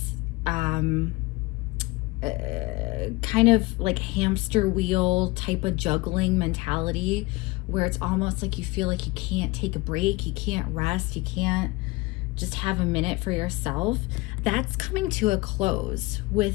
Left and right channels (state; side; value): quieter; right; 22.9 dB